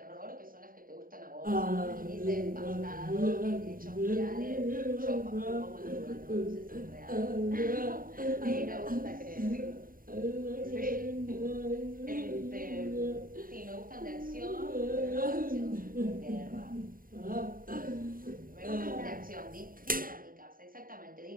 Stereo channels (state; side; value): late; left; 0.41 ms